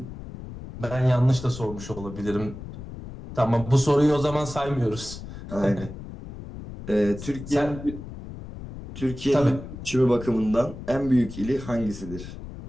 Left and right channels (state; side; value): noise; left; rumble, 12 dB below the sound